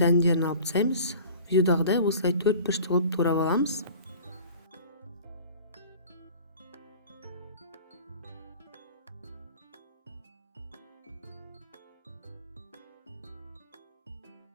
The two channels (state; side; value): inverted; both; correlation -0.43